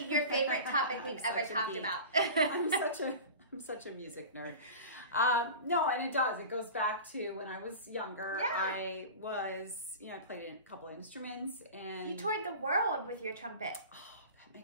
your favorite topic we've ever talked about. I'm such a music nerd. No, and it does. It goes back to when I was younger. Yeah. I was, I played a couple of instruments and... You toured the world with your trumpet.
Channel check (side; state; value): both; inverted; correlation -0.34